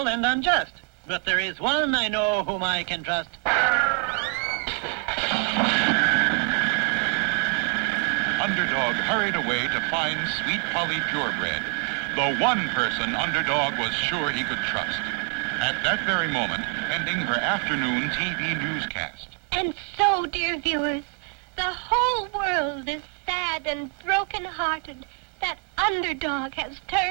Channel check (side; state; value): left; quieter; 37.9 dB